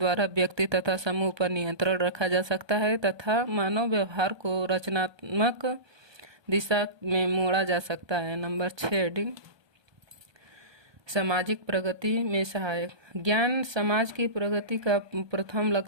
व्यक्ति तथा समूह पर नियंत्रण रखा जा सकता है तथा मानव व्यवहार को रचनात्मक दिशा में मोड़ा जा सकता है। नंबर 6 हेडिंग सामाजिक प्रगति में सहायक। ज्ञान समाज की प्रगति का प्रथम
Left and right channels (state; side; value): late; left; 1.2 ms